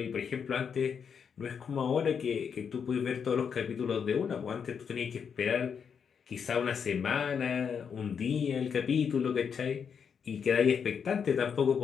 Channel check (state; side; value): quieter; right; 6.9 dB